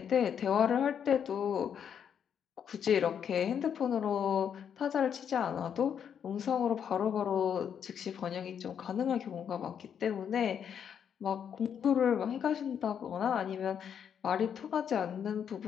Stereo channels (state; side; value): quieter; right; 8.1 dB